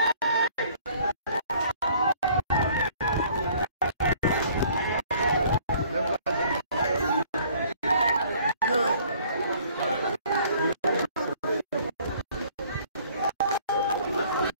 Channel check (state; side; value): inverted; both; correlation -0.57